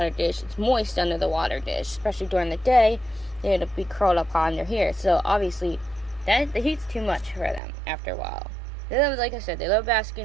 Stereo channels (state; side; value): drops out; left; at 7.6 s